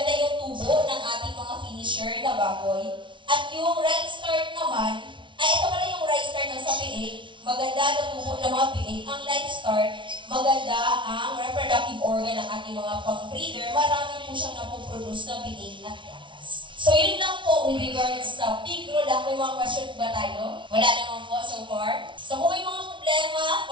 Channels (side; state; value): left; late; 0.24 ms